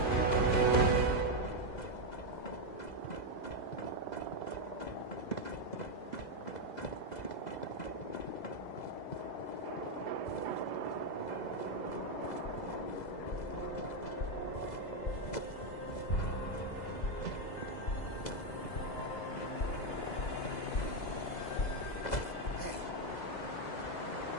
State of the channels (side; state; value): right; late; 2.0 ms